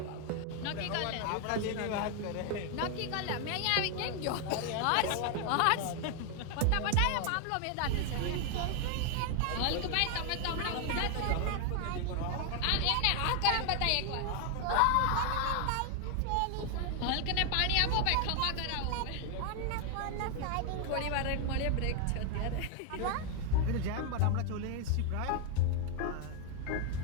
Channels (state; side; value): different; both; correlation 0.00